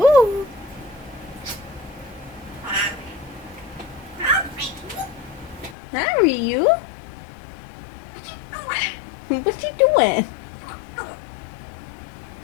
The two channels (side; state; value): right; drops out; at 5.8 s